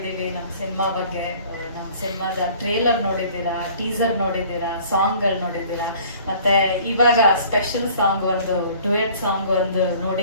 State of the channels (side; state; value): both; inverted; correlation -0.52